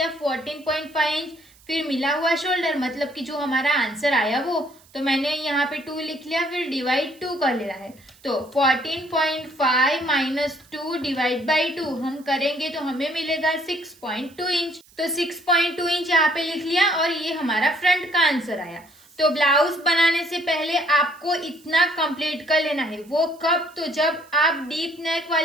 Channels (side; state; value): right; noise; hiss, 28 dB below the sound